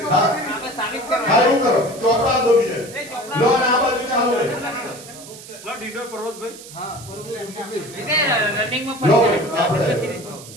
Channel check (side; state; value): right; noise; hiss, 16 dB below the sound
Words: હારું કરો ચોપડા દો બીજે લો ના બાજુ ચાલુ રે લો ડીડો પર્વતભાઈ હા પર્વતભાઈ રનિંગ માં ફરી